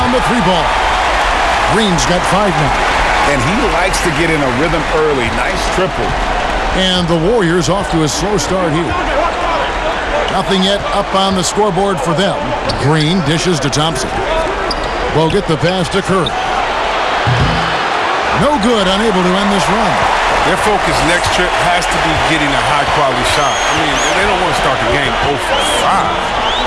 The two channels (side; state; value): both; identical; correlation 1.00